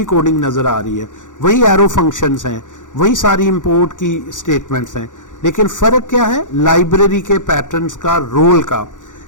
कोडिंग नज़र आ रही है। वही एरो फंक्शंस हैं, वही सारी इंपोर्ट की स्टेटमेंट्स हैं, लेकिन फ़र्क क्या है, लाइब्रेरी के पैटर्न्स का, रोल का।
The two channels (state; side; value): late; right; 0.87 ms